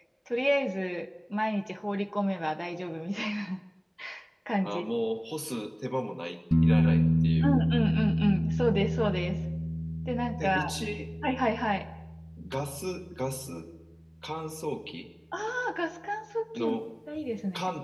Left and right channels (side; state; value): both; identical; correlation 1.00